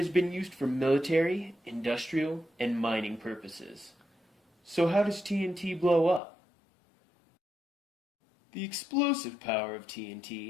been used for military, industrial, and mining purposes. So how does TNT blow up? The explosive power of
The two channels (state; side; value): drops out; right; at 6.2 s